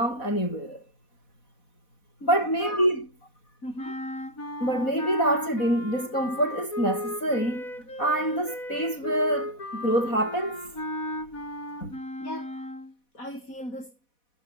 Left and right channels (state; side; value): late; right; 4.1 ms